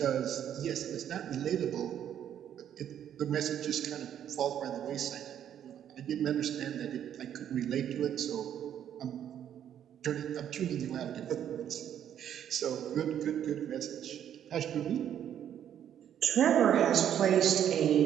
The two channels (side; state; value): left; quieter; 9.9 dB